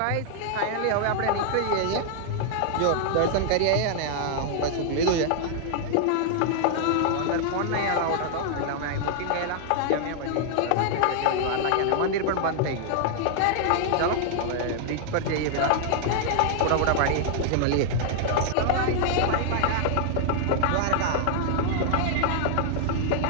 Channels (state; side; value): different; both; correlation 0.00